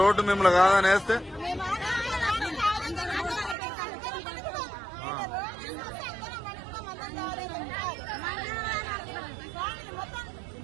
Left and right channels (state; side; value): drops out; left; at 3.6 s